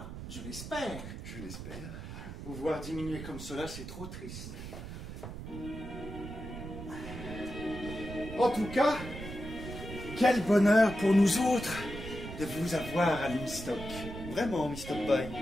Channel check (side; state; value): right; noise; rumble, 10 dB below the sound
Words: je l'espère. Je l'espère. Vous voir diminuer comme cela, c'est trop triste. En tout cas, quel bonheur pour nous autres de vous avoir à Limstock. Vraiment, Mr. Pye.